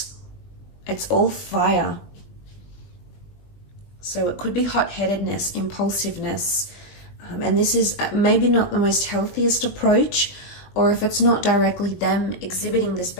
it's all fire. So it could be hot-headedness, impulsiveness, and this is maybe not the most healthiest approach, or if it's not directly them exhibiting this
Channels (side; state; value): right; late; 20 ms